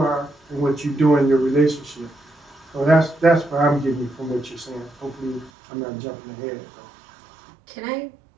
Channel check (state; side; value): drops out; left; at 5.5 s